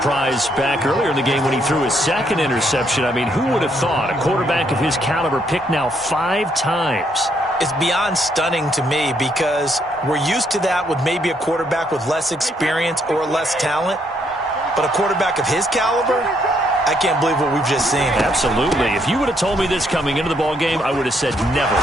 back earlier in the game when he threw his 2nd interception. I mean, who would have thought a quarterback of his caliber picked now 5 times? It's beyond stunning to me because we're used to that with maybe a quarterback with less experience or less talent. But a quarterback of his caliber, I can't believe what we've just seen. Absolutely. If you would have told me this coming into the ball game, I would have said never,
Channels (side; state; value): both; normal; correlation 0.72